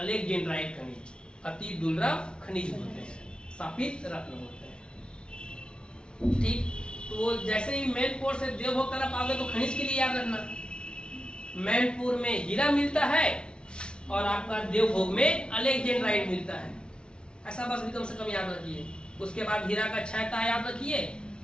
खनिज, अति दुर्लभ खनिज बोलते हैं, शापित रत्न बोलते हैं। ठीक, तो जैसे ही मैनपुर से देवभोग तरफ आओगे तो खनिज के लिए याद रखना, मैनपुर में हीरा मिलता है और आपका देवभोग में अलेक्जेंड्राइट मिलता है। ऐसा बस भी कम से कम याद रखिए। उसके बाद हीरा का 6 तह याद रखिए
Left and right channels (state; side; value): late; right; 0.055 ms